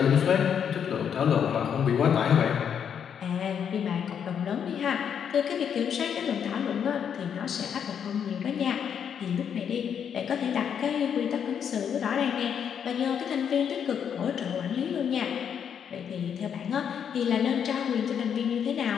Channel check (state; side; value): quieter; right; 8.0 dB